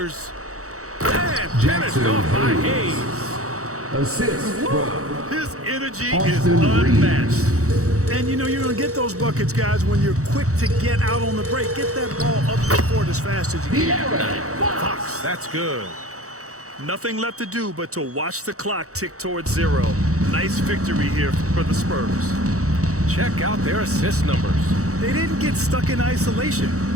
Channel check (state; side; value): late; left; 0.65 ms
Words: And finished off by Hayes. Assist from His energy is Austin unmatched. And you know you're going to get those buckets, guys, when you're quick to get out on the break. Get that ball up the court as fast as you can. Fox, that's good. Nothing left to do but to watch the clock tick towards 0. Nice victory here for the Spurs. Check out their assist numbers. They didn't get stuck in isolation.